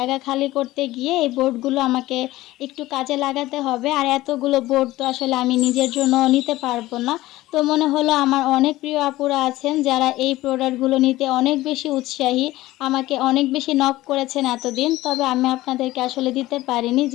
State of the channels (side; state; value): right; quieter; 17.2 dB